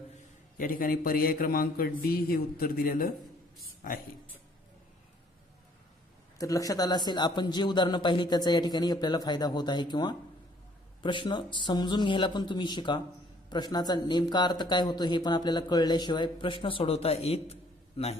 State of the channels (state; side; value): normal; both; correlation 0.61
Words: या ठिकाणी पर्याय क्रमांक डी हे उत्तर दिलेलं आहे. तर लक्षात आलं असेल आपण जे उदाहरणं पाहिली त्याचा या ठिकाणी आपल्याला फायदा होत आहे किंवा प्रश्न समजून घ्यायला पण तुम्ही शिका. प्रश्नाचा नेमका अर्थ काय होतो हे पण आपल्याला कळल्याशिवाय प्रश्न सोडवता येत